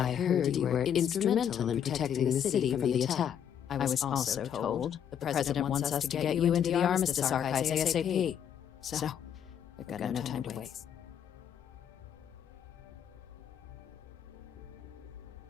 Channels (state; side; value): quieter; right; 8.9 dB